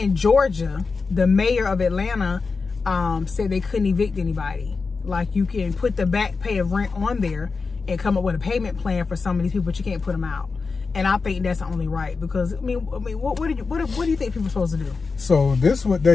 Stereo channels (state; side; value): quieter; right; 4.5 dB